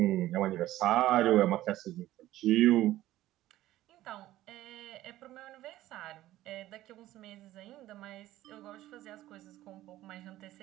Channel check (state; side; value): quieter; left; 15.0 dB